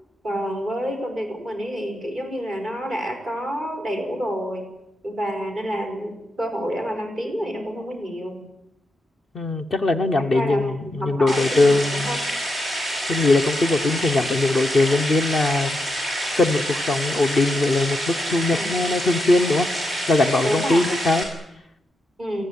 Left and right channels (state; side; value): normal; both; correlation 0.84